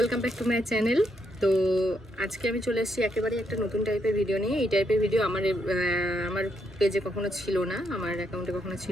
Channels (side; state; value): both; normal; correlation 0.78